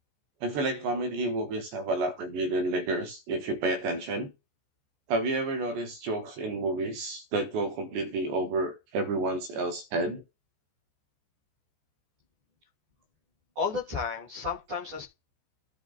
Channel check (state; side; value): late; left; 14 ms